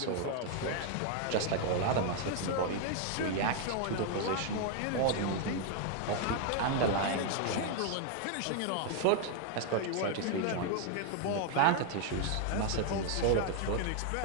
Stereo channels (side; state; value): both; different; correlation 0.00